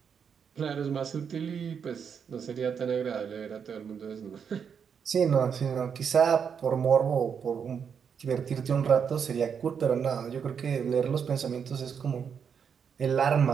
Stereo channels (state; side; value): quieter; left; 7.0 dB